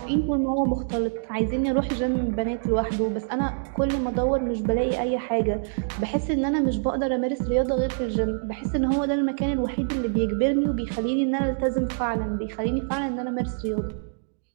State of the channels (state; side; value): silent; left; digital silence